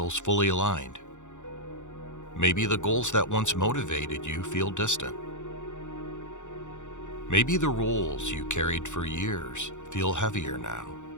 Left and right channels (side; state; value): right; late; 0.85 ms